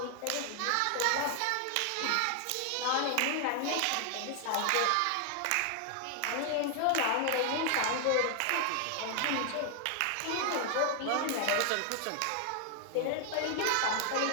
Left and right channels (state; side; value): different; both; correlation 0.00